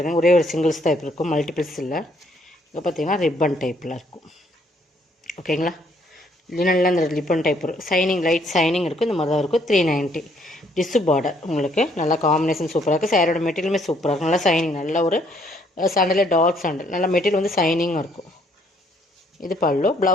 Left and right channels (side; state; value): both; normal; correlation 0.67